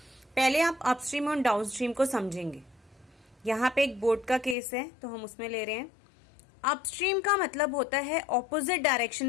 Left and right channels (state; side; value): drops out; right; at 4.5 s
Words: पहले आप अपस्ट्रीम और डाउनस्ट्रीम को समझेंगे. यहाँ पे एक बोर्ड का केस है, तो हम उसमें ले रहे हैं. अपस्ट्रीम का मतलब होता है ऑपोजिट डायरेक्शन